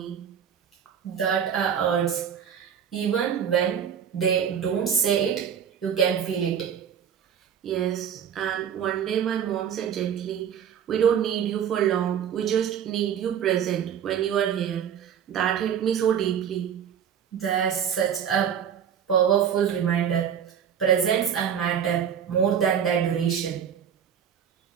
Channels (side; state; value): left; quieter; 8.4 dB